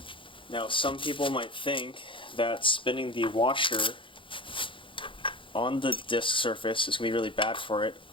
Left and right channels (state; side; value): late; right; 0.25 ms